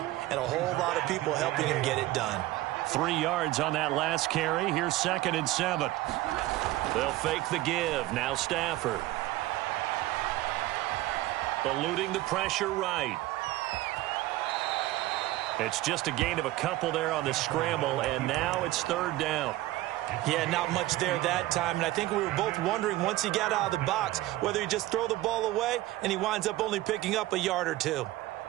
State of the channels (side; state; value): left; quieter; 16.9 dB